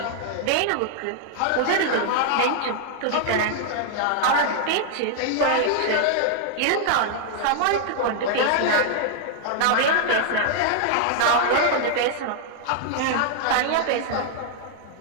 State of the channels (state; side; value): different; both; correlation 0.00